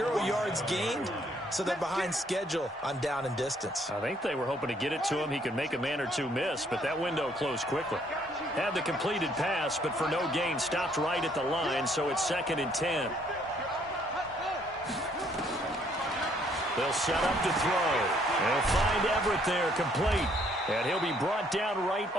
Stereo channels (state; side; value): normal; both; correlation 0.66